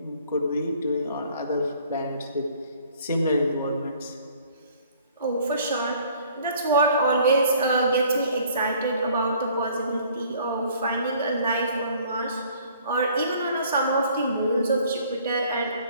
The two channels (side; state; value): both; inverted; correlation -0.56